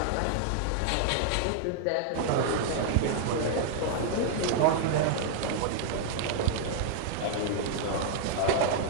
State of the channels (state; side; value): different; both; correlation -0.01